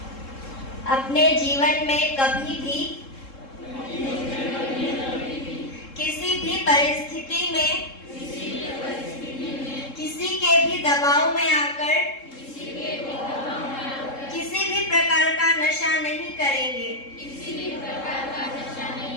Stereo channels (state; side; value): late; right; 3.7 ms